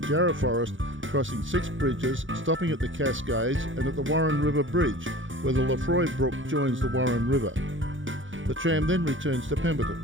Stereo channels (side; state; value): left; late; 0.56 ms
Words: Jarrah forest, crossing 6 bridges, stopping at the Cascades and at the Warren River Bridge, where the Lefroy Brook joins the Warren River. The tram then returns to